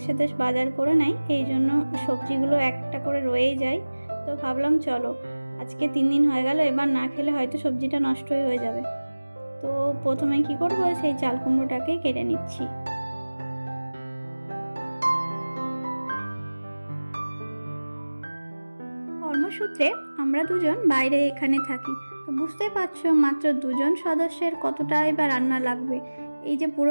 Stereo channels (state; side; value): inverted; both; correlation -1.00